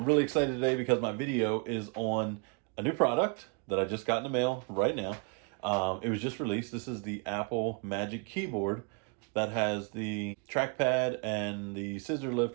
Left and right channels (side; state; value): left; quieter; 36.2 dB